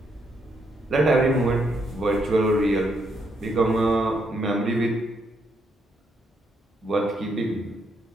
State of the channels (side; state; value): both; normal; correlation 0.76